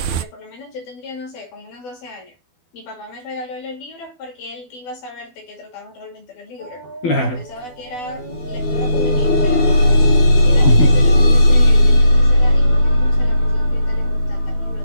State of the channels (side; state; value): right; late; 12 ms